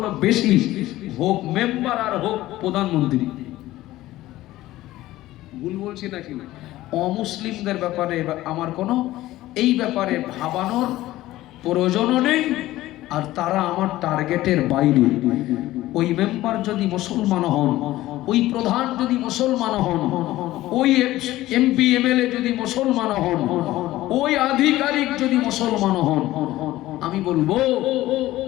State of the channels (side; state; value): right; quieter; 16.1 dB